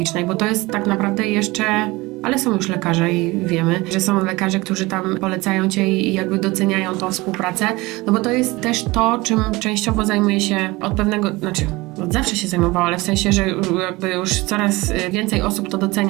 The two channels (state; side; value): quieter; left; 21.9 dB